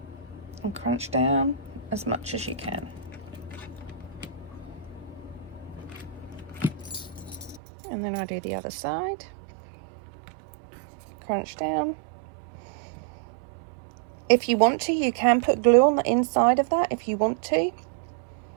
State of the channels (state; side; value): drops out; left; at 7.6 s